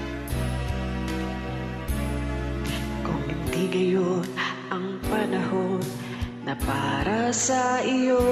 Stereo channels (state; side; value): identical; both; correlation 1.00